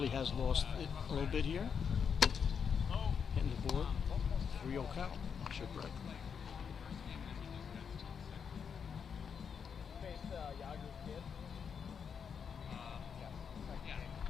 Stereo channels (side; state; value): right; quieter; 6.8 dB